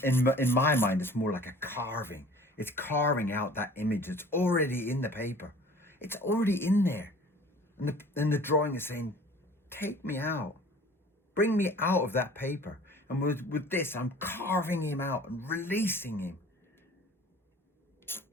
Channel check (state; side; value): normal; both; correlation 0.47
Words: in my mind, it's more like a carving. It's carving out that image. It's already in the paper. It's already in there. And the drawing is saying, take me out. Bring me out of that paper. And with this, I'm carving him out and releasing him.